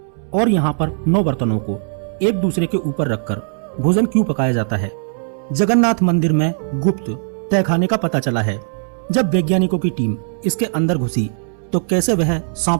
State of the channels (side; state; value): left; silent; 64 dB below the other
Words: और यहाँ पर 9 बर्तनों को एक दूसरे के ऊपर रखकर भोजन क्यों पकाया जाता है? जगन्नाथ मंदिर में गुप्त तहखाने का पता चला है। जब वैज्ञानिकों की टीम इसके अंदर घुसी तो कैसे वह